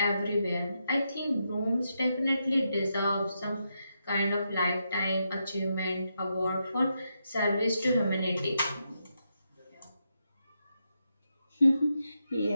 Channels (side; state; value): both; inverted; correlation -0.84